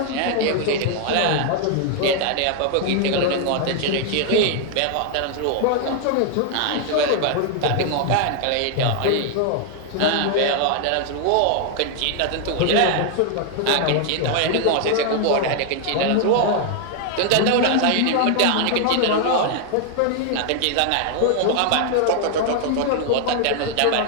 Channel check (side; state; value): both; different; correlation 0.00